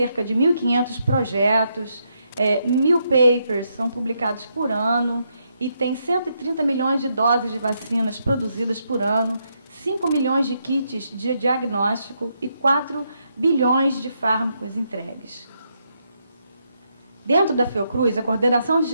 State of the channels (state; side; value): inverted; both; correlation -0.79